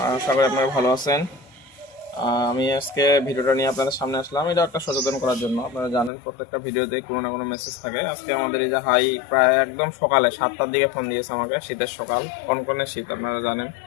আশা করি আপনারা ভালো আছেন। আমি আজকে ভিডিওটা নিয়ে আপনাদের সামনে আসলাম। এটা একটা সচেতন করার জন্য। আপনারা জানেন প্রত্যেকটা ভিডিওতেই কোনো না কোনো মেসেজ থাকে। আজকে আমাদের এই যে হাই প্রায় একদম সকালে 7টার দিকে ফোন দিয়েছে আমাকে, শীতের সকাল, কনকনে শীত আপনারা জানেন।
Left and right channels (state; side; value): drops out; right; at 6.1 s